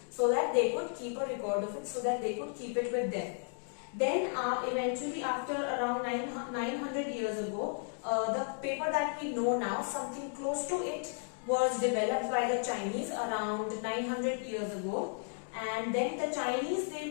so that they could keep a record of it, so that they could keep it with them. Then eventually, after around 900 years ago, the paper that we know now, something close to it, was developed by the Chinese around 900 years ago. And then the Chinese,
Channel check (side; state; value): right; silent; 55 dB below the other